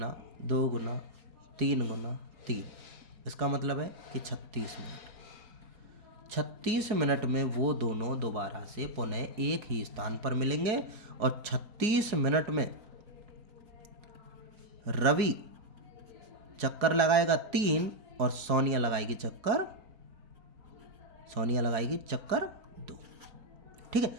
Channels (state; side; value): late; left; 4.7 ms